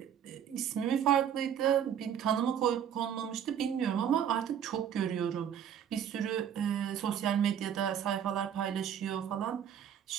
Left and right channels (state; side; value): quieter; left; 9.1 dB